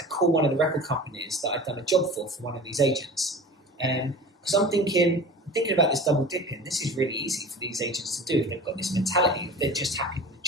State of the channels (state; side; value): normal; both; correlation 0.37